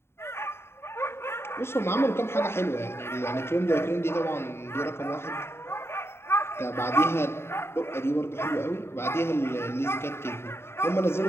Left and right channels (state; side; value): late; right; 0.12 ms